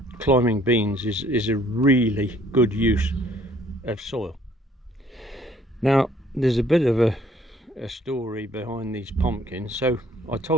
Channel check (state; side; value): normal; both; correlation 0.60